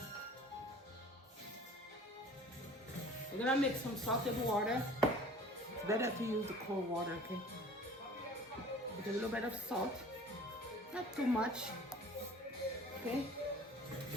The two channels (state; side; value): normal; both; correlation 0.47